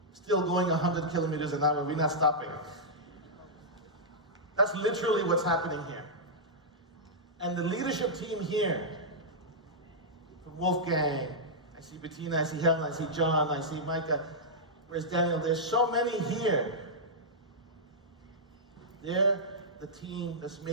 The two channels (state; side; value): normal; both; correlation -0.10